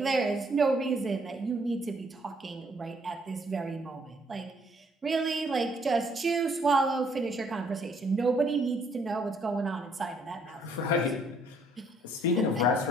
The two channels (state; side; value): normal; both; correlation 0.66